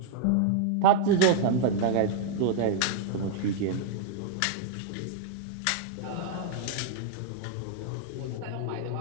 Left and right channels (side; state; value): both; different; correlation -0.01